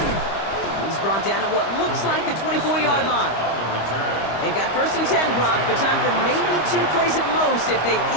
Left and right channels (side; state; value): right; late; 25 ms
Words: He's brought down at what looks like the 24-yard line. They've got 1st and 10, Brock, but time for maybe 2 plays at most if they